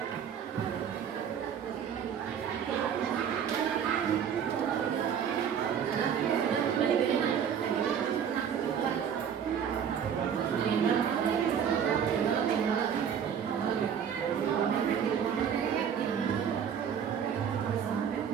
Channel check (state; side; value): quieter; left; 8.0 dB